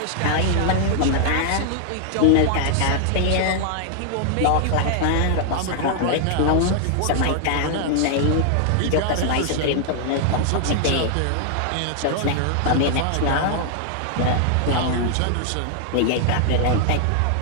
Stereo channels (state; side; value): different; both; correlation 0.00